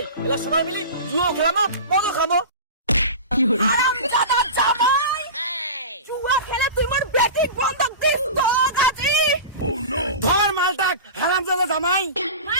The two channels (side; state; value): both; inverted; correlation -0.30